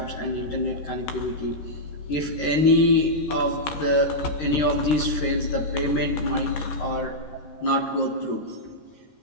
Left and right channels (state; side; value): late; right; 13 ms